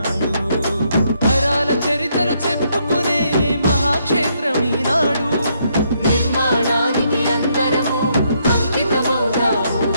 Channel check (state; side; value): inverted; both; correlation -0.74